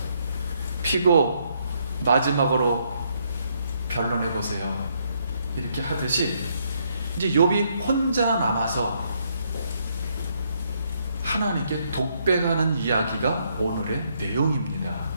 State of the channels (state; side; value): inverted; both; correlation -0.73